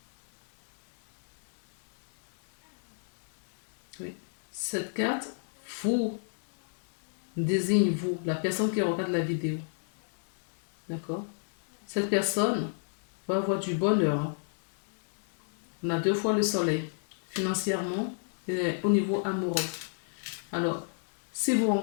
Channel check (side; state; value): right; silent; digital silence